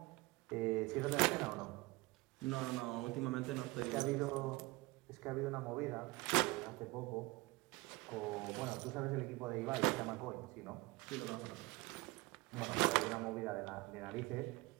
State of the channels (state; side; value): quieter; left; 22.8 dB